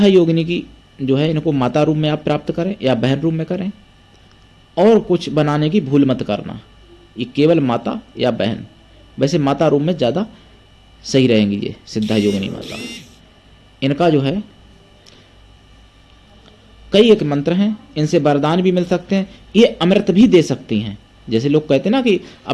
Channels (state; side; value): identical; both; correlation 1.00